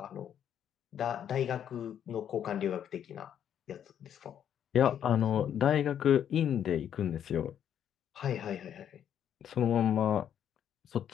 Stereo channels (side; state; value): right; quieter; 9.4 dB